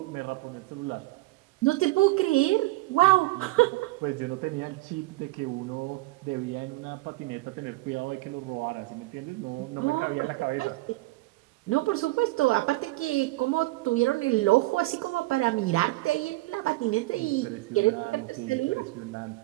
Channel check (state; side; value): quieter; left; 20.3 dB